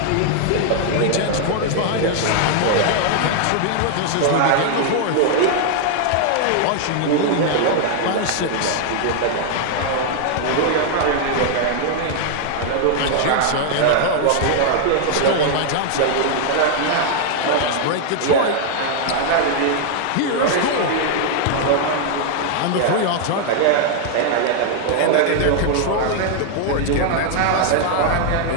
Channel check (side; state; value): both; different; correlation 0.00